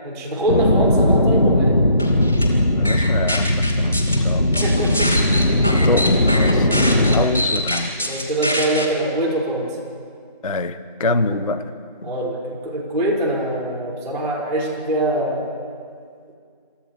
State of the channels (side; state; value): both; inverted; correlation -0.56